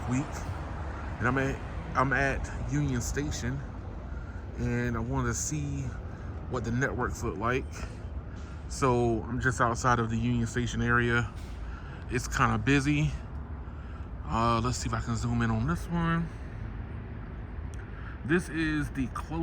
week, and I'm at Union Station, and I want to see what the networks look like. So I'm just outside of the Union Station area. It's kind of busy. Let's see if I can zoom in on this one. This is the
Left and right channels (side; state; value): both; identical; correlation 1.00